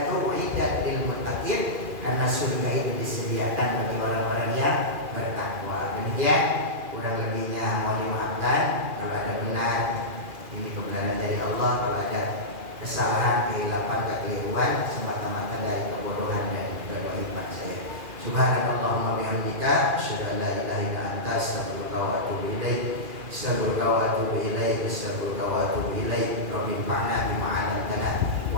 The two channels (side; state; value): left; late; 2.4 ms